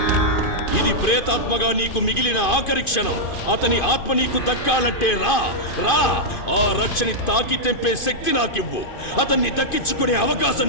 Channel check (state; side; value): late; right; 2.5 ms